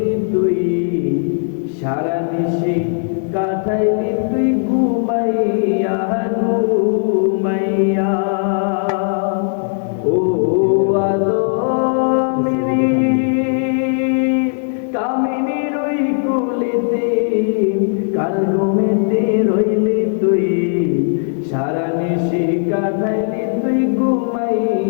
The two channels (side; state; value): right; silent; digital silence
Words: তুই, সারা নিশি কাটাইলি তুই ঘুমাইয়া ঘুমাইয়া। ও আদমেরি কামিনীর ওই কুলেতে কাল ঘুমেতে রইলি তুই, সারা নিশি কাটাইলি তুই